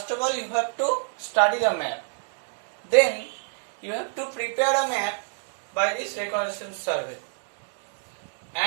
of all, you have to study the map. Then you have to prepare a map by this reconnaissance survey.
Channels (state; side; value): silent; left; digital silence